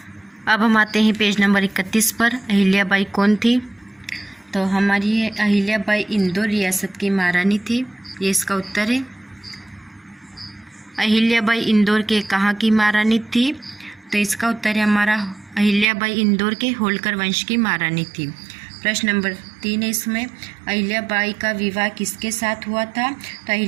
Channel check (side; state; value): left; drops out; at 15.9 s